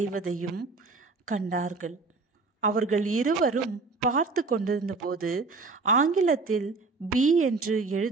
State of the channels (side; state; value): left; quieter; 4.0 dB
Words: கண்டார்கள். அவர்கள் இருவரும் பார்த்து கொண்டிருந்த போது ஆங்கிலத்தில் பி என்று